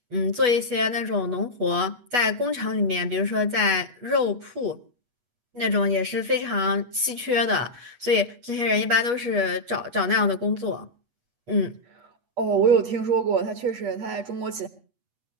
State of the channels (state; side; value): late; left; 8.3 ms